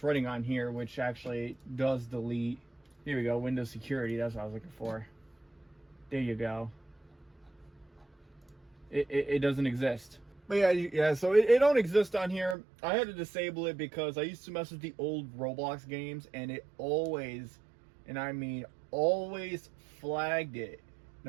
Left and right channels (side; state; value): left; drops out; at 12.6 s